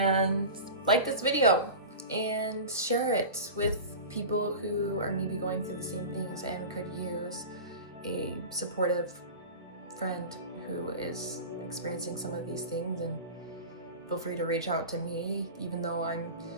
like this video and share it with people who are maybe going through the same things and could use a supportive friend who is experiencing some of these things. And feel free to reach out to me. Even though I'm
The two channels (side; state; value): both; inverted; correlation -0.31